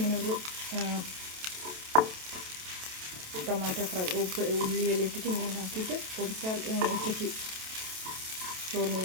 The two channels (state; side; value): late; left; 27 ms